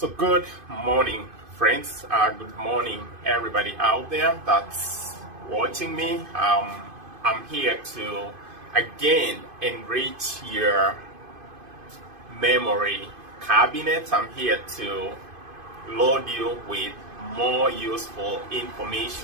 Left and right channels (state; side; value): late; left; 2.5 ms